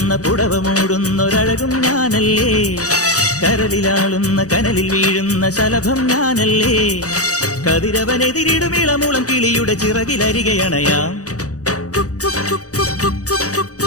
പുടവ മൂടുന്നൊരഴകും ഞാനല്ലേ, കരലിലാളുന്ന കനലിൽ വീഴുന്ന ശലഭം ഞാനല്ലേ. കതിരവനെതിരിടും ഇളമൂളം കിളിയുടെ ചിറകിലരികയണയാം.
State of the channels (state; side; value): late; right; 0.66 ms